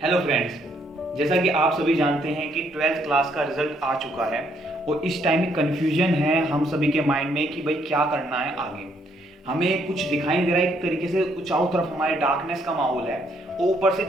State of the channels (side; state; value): both; normal; correlation 0.70